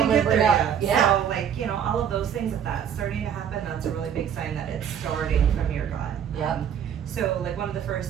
I'm get gonna there bring up. yet. Yeah. So like, all of those things, if that's starting to happen, that's a really big sign that it's starting from your gut. Yep. So like one of the first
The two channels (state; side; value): quieter; left; 8.6 dB